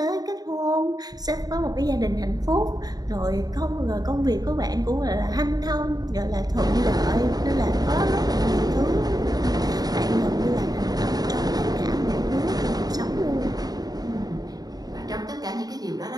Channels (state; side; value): late; left; 0.19 ms